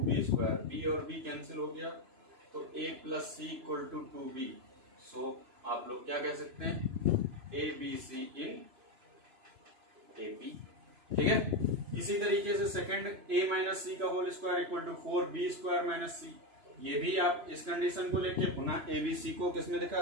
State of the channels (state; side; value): late; left; 3.0 ms